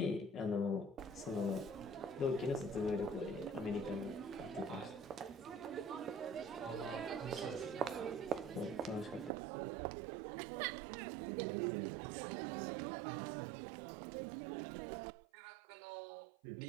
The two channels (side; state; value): left; drops out; at 9.3 s